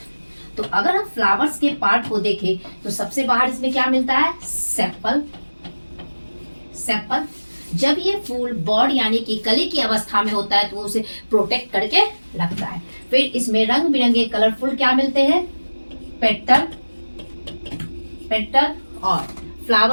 तो अगर हम फ्लावर्स के पार्ट को देखें तो सबसे बाहर इसमें क्या मिलता है, सेपल। सेपल जब ये फूल बॉड यानी कि कली की अवस्था में होता है तो उसे प्रोटेक्ट करके रखता है। फिर इसमें रंग बिरंगे कलरफुल क्या मिलते हैं, पेटल। पेटल और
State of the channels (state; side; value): inverted; both; correlation -1.00